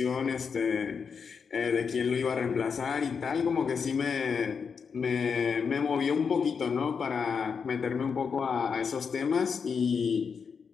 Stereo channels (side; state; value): right; quieter; 6.0 dB